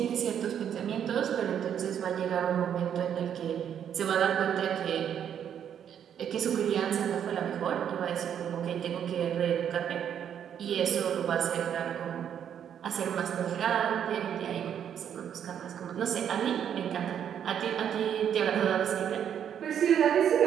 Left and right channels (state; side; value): quieter; left; 9.0 dB